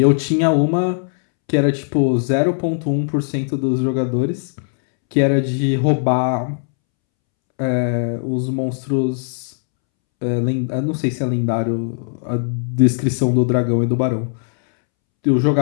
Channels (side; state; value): right; silent; 67 dB below the other